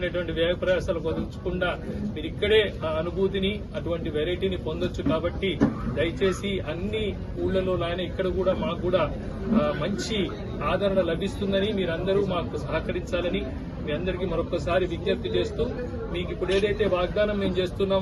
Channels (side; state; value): both; identical; correlation 1.00